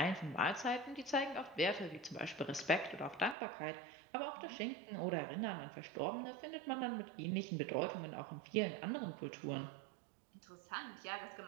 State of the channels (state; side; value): drops out; left; at 3.4 s